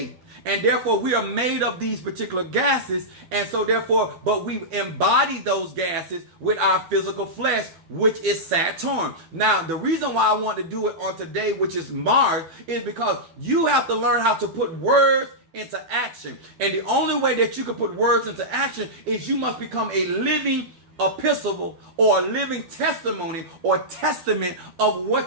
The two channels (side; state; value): left; late; 12 ms